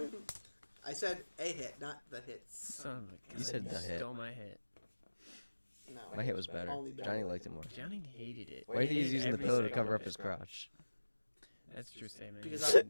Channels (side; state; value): both; inverted; correlation -1.00